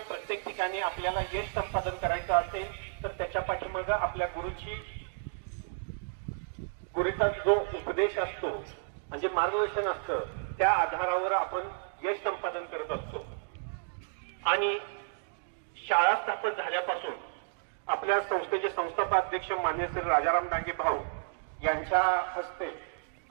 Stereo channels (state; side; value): silent; left; digital silence